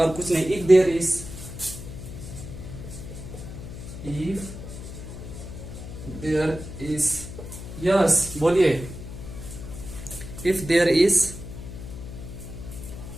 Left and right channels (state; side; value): noise; left; hum, 10 dB below the sound